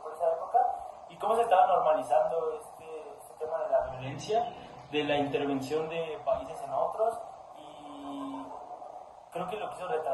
esa época. Y cómo se estaba normalizando este tema de la violencia, de la intervención de países en otros. Y creo que lo quiso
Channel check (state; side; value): identical; both; correlation 1.00